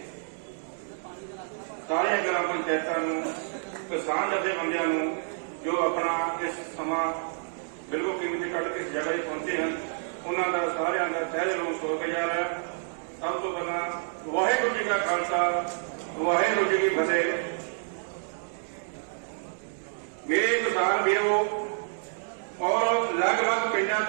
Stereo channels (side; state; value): left; silent; digital silence